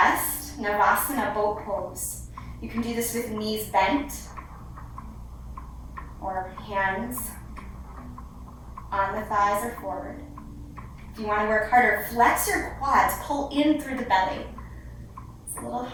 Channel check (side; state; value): both; identical; correlation 1.00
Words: Navasana, boat pose. You can do this with knees bent or hands on the thighs or forward. If you want to work harder, flex your quads, pull in through the belly. It's a little